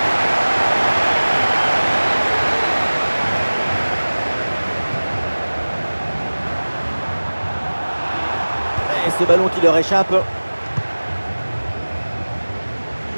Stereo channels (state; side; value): inverted; both; correlation -1.00